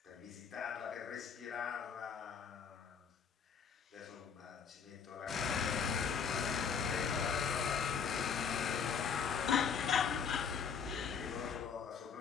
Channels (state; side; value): quieter; right; 6.6 dB